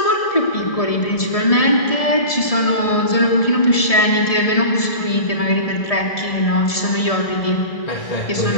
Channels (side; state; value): right; late; 1.7 ms